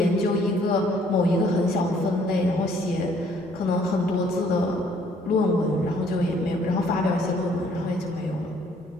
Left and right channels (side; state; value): both; normal; correlation 0.62